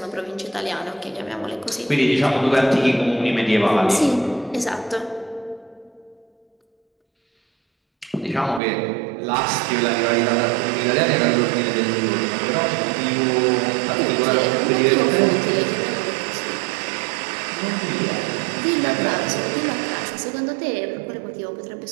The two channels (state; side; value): drops out; left; at 8.6 s